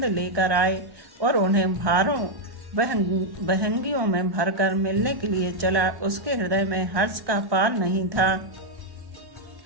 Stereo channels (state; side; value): late; left; 1.2 ms